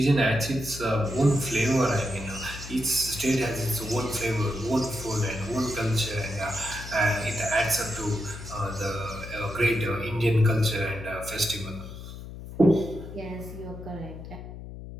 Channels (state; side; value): noise; left; hum, 11 dB below the sound